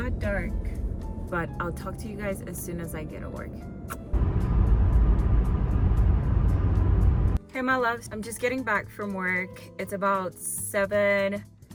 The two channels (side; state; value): both; identical; correlation 1.00